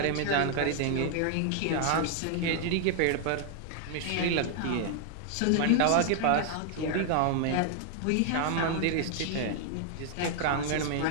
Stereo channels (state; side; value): different; both; correlation 0.00